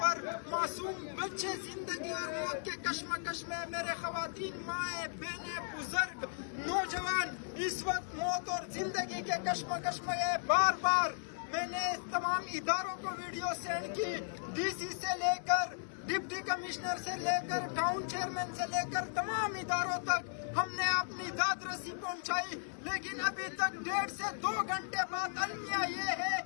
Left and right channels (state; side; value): silent; right; 54 dB below the other